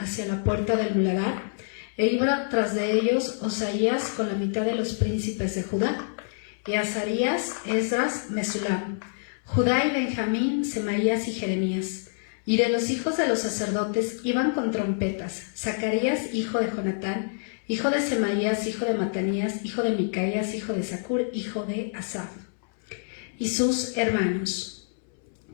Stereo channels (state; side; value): silent; right; 60 dB below the other